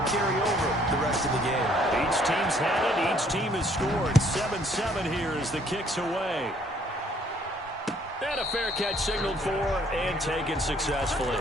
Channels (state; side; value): normal; both; correlation 0.63